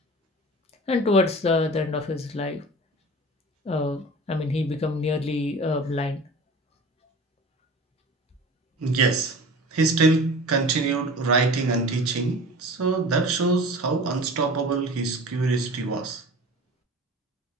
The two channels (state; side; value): normal; both; correlation 0.39